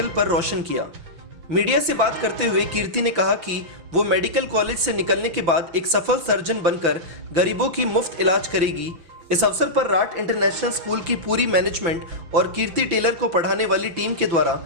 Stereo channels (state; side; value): late; left; 6.0 ms